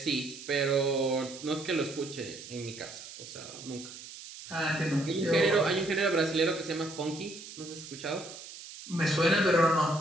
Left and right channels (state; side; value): noise; right; hiss, 14 dB below the sound